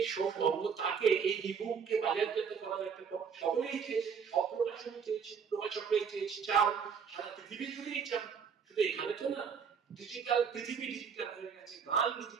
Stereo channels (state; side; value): quieter; left; 6.5 dB